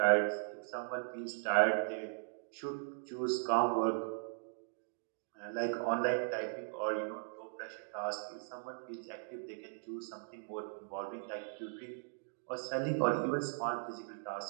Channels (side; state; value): left; silent; digital silence